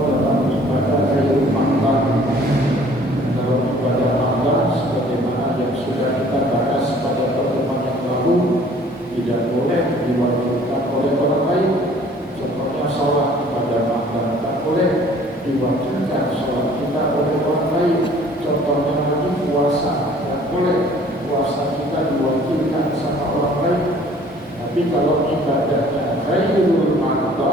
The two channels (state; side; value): normal; both; correlation 0.53